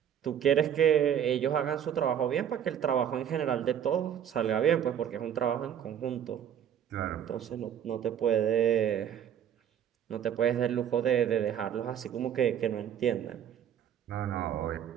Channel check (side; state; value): left; quieter; 9.4 dB